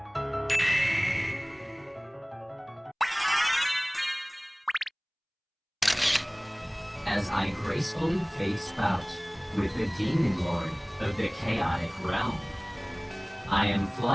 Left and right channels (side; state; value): both; identical; correlation 1.00